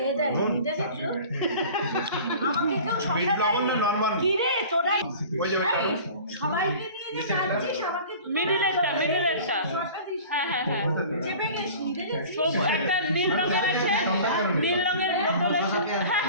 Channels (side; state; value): both; inverted; correlation -0.42